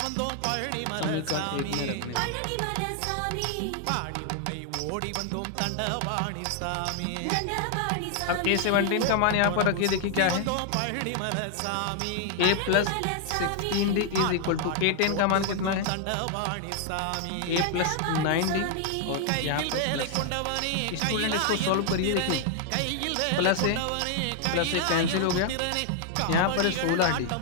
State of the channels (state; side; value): different; both; correlation 0.00